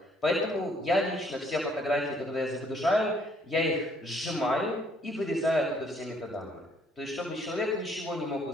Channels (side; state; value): both; normal; correlation 0.64